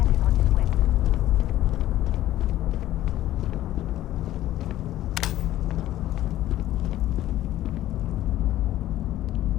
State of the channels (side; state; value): right; quieter; 13.9 dB